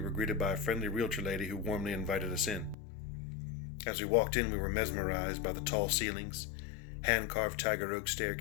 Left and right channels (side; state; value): right; drops out; at 2.8 s